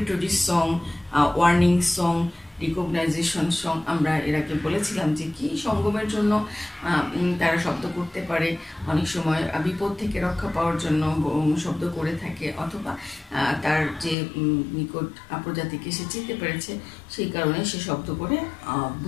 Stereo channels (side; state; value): right; drops out; at 14.2 s